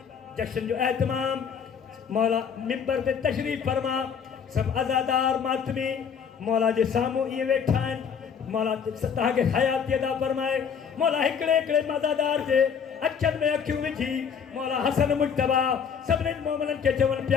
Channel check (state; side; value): quieter; right; 7.0 dB